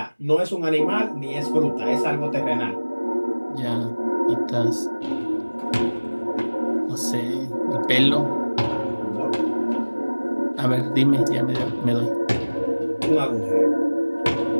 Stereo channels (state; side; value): inverted; both; correlation -1.00